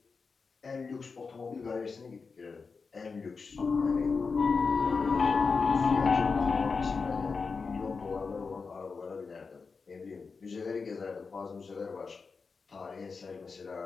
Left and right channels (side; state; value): right; quieter; 4.8 dB